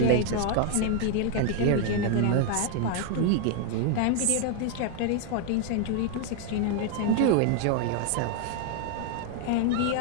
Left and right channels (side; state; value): both; different; correlation 0.01